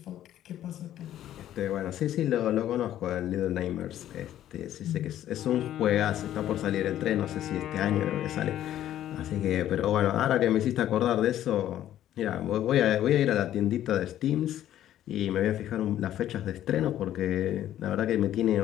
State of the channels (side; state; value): right; quieter; 12.1 dB